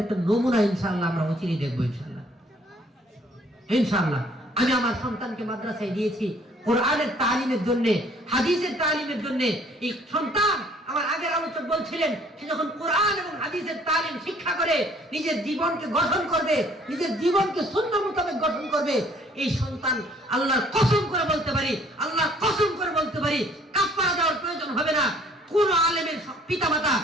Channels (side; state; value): both; normal; correlation 0.59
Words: একটা নমুনা ইনশাআল্লাহ আমরা অচিরেই দেখবো। ইনশাআল্লাহ ইনশাআল্লাহ আমি আমার সন্তানকে মাদ্রাসায় দিয়েছি কোরআনের তালিমের জন্য, হাদিসের তালিমের জন্য। এই সন্তান, আমার আগের আলোচক বলছিলেন, সে যখন কোরআন এবং হাদিসের তালিম শিক্ষা করে নিজের জীবনকে গঠন করবে, নিজের জীবনকে সুন্নাহ মোতাবেক গঠন করবে, এই সন্তান আল্লাহর কসম করে বলতে পারি, আল্লাহর কসম করে বলতে পারি, কাফারা দেওয়ার প্রয়োজন হবে না। কোন আলেমের পিতামাতা